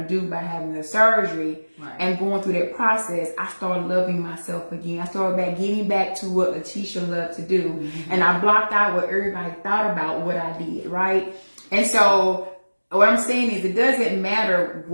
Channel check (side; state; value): both; inverted; correlation -1.00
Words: do by having the surgery and going through that process, I started loving myself again. I started getting back to what Letitia loved to do. Mm-hmm. And I blocked out what everybody thought about what I did, right? And so what I'm saying is it doesn't matter